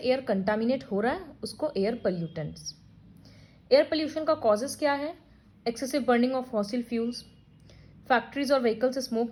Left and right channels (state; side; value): identical; both; correlation 1.00